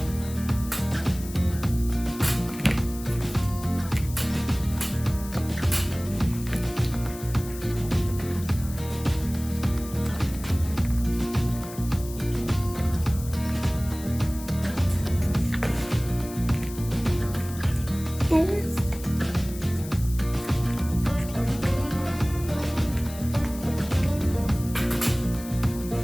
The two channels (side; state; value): left; noise; hiss, 15 dB below the sound